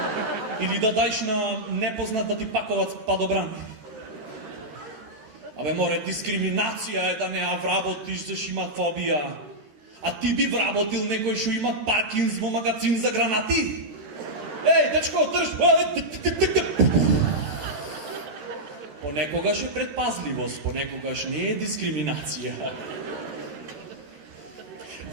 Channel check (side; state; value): left; late; 13 ms